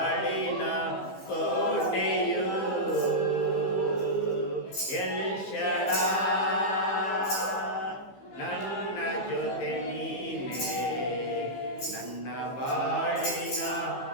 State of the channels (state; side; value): late; right; 15 ms